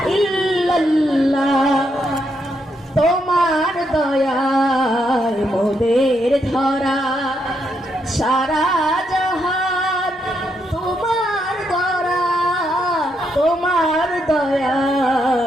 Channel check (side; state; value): both; normal; correlation 0.79